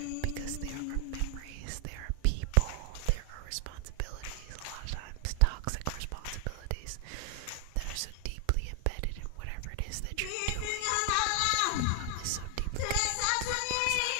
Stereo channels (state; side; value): different; both; correlation 0.00